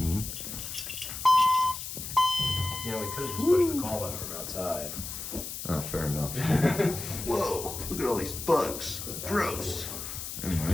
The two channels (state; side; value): noise; left; hiss, 7 dB below the sound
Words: You know, we could have just pushed the call button from outside. Oh, fair enough. Whoa, look at all these bugs. Gross.